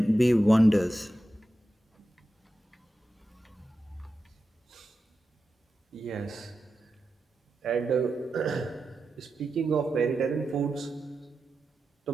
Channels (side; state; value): both; normal; correlation 0.91